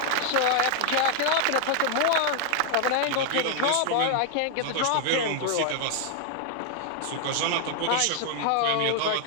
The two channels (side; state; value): both; different; correlation 0.00